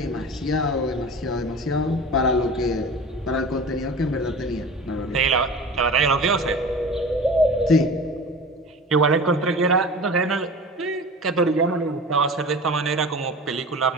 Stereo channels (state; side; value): normal; both; correlation 0.36